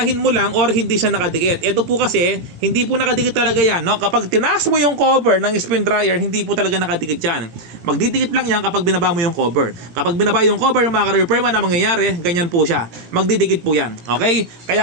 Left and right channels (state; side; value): late; left; 17 ms